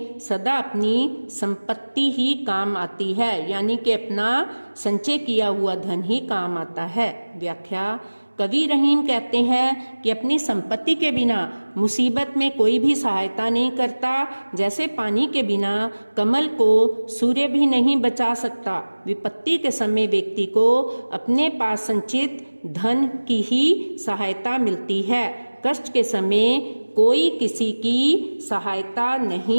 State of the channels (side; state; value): both; inverted; correlation -1.00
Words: सदा अपनी संपत्ति ही काम आती है, यानी कि अपना संचय किया हुआ धन ही काम आता है। व्याख्या, कवि रहीम कहते हैं कि अपनी संपत्ति के बिना मुसीबत में कोई भी सहायता नहीं करता। जैसे पानी के बिना कमल को सूर्य भी नहीं बचा सकता, विपत्ति के समय व्यक्ति को अपने पास संचित धन की ही सहायता मिलती है। कष्ट के समय कोई किसी की सहायता